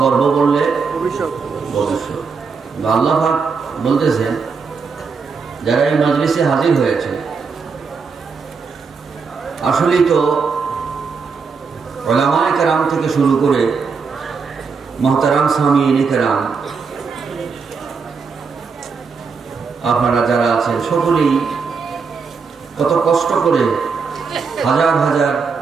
করব বললে ভবিষ্যৎ। আল্লাহ পাক বলতেছেন যারা এই মজলিসে হাজির হয়েছে, আসলেই তো উলামায়ে কেরাম থেকে শুরু করে মুহতারাম সামিঈনে কেরাম, আপনারা যারা আছেন সকলেই কত কষ্ট করে হাজার হাজার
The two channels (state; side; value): quieter; left; 5.3 dB